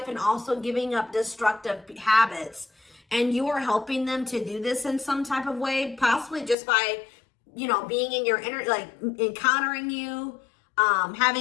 and also giving up destructive habits. And you are helping them to do this in some type of way, possibly just by, being in your inner, like encountering you,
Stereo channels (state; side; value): drops out; right; at 6.6 s